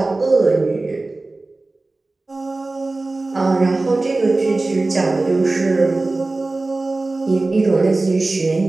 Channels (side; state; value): left; quieter; 3.2 dB